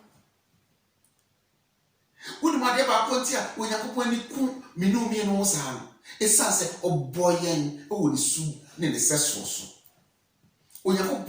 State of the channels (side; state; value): both; identical; correlation 1.00